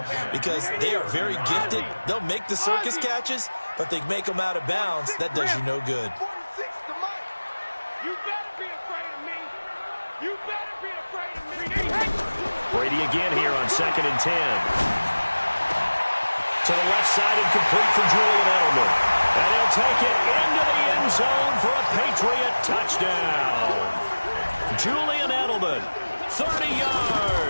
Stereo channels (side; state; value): both; inverted; correlation -1.00